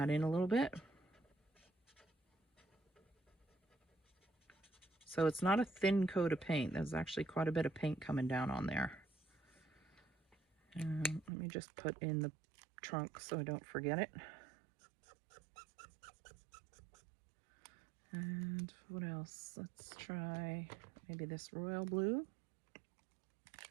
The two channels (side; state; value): left; drops out; at 11.3 s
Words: in a little bit. So it's not a thin coat of paint. There's actually quite a bit of paint coming down on there. Let me just put in the trunk so I don't forget it. And what else? Let's try maybe this royal blue.